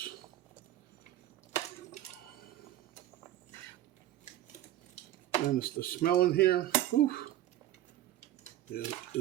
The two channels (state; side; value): quieter; left; 13.5 dB